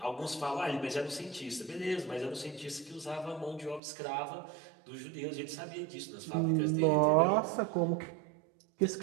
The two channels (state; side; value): drops out; left; at 3.8 s